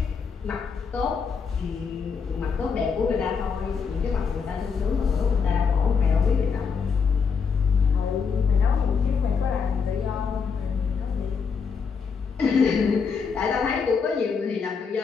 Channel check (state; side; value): quieter; right; 5.8 dB